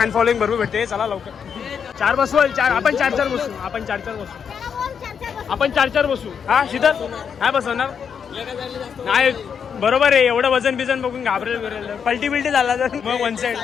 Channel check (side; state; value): right; quieter; 7.1 dB